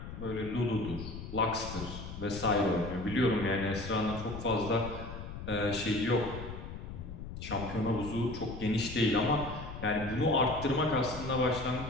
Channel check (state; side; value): noise; left; rumble, 9 dB below the sound